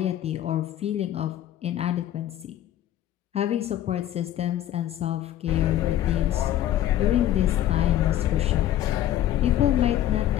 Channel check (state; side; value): quieter; right; 12.3 dB